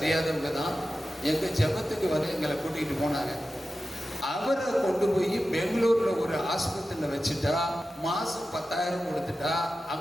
தான் எங்கள் ஜெபத்துக்கு வந்து எங்களை கூட்டிகிட்டு போனாங்க. அவரை கொண்டு போய் பெங்களூர்ல ஒரு ஆஸ்பத்திரியில வச்சுட்டா மாசம் 10,000 கொடுத்துட்டா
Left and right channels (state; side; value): normal; both; correlation 0.93